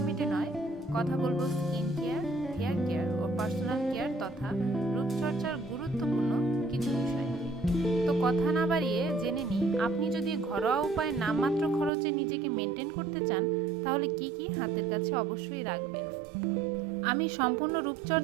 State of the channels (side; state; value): left; drops out; at 11.9 s